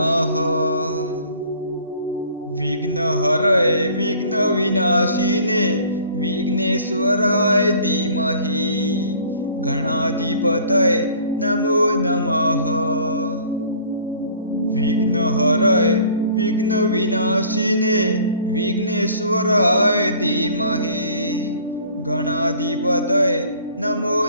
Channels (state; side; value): inverted; both; correlation -0.52